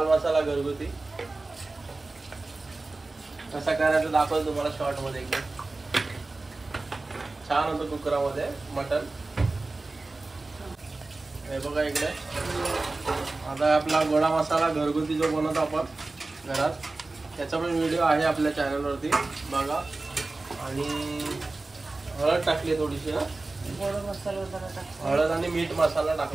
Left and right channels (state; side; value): quieter; left; 3.3 dB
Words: मसाला घरगुती. कसा करायचं दाखवतो तुम्हाला शॉर्ट मध्ये एकदम. छान होतं कुकरामध्ये मटण. हे बघा इकडे आता आपला गोडा मसाला घरगुती जो बनवतो आपण घरात, त्याचा पण व्हिडिओ आहे आपल्या चॅनलवरती बघा. आणि हळद टाकली थोडीशी ना, हळद आणि मीठ मसाला